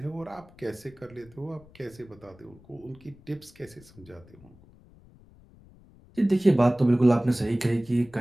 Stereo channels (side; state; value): left; noise; rumble, 25 dB below the sound